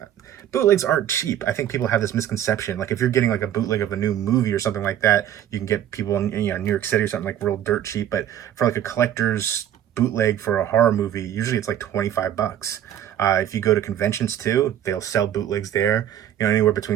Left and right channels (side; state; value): left; quieter; 10.9 dB